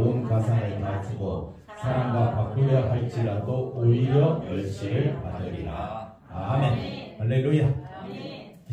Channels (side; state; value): both; identical; correlation 1.00